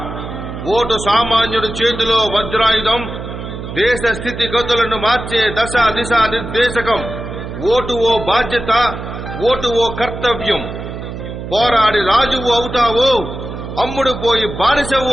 vote సామాన్యుడి చేతిలో వజ్రాయుధం, దేశ స్థితిగతులను మార్చే దశ దిశ నిర్దేశకం. ఓటు ఓ బాధ్యత, ఓటు ఓ కర్తవ్యం. పోరాడి రాజువు అవుతావో, అమ్ముడు పోయి బానిసవు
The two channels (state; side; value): noise; right; hum, 8 dB below the sound